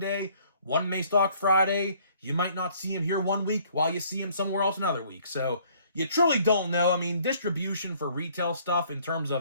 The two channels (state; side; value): inverted; both; correlation -0.60